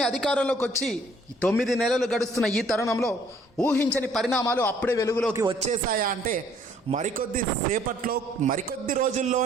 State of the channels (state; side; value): normal; both; correlation 0.61